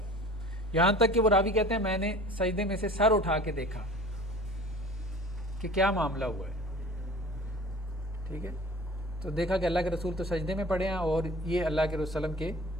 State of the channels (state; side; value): normal; both; correlation 0.43